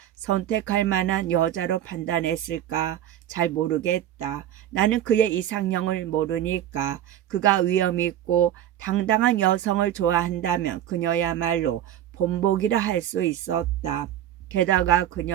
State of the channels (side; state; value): left; quieter; 11.5 dB